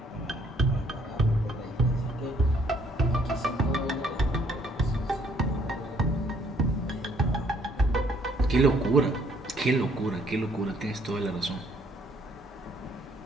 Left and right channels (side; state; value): both; normal; correlation 0.65